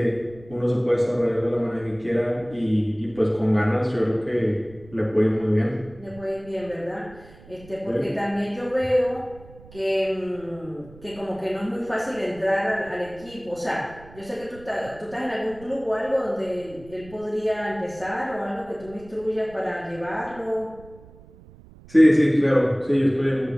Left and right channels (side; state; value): right; noise; rumble, 21 dB below the sound